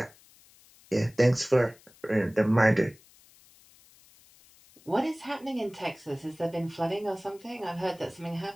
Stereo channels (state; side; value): noise; left; hiss, 27 dB below the sound